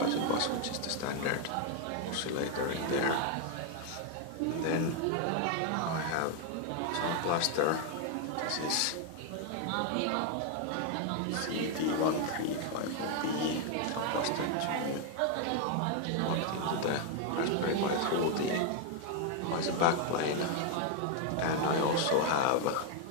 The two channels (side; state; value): both; different; correlation 0.01